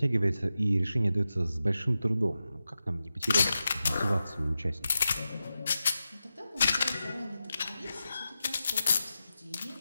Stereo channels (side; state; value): both; inverted; correlation -0.91